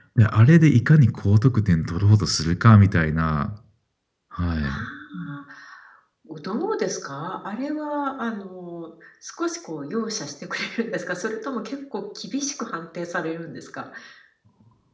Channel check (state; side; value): identical; both; correlation 1.00